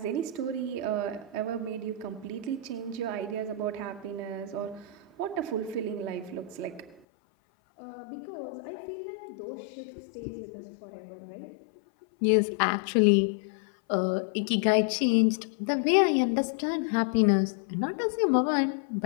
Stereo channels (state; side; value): drops out; right; at 7.0 s